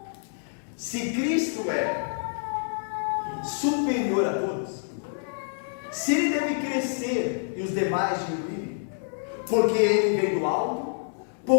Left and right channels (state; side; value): silent; right; 60 dB below the other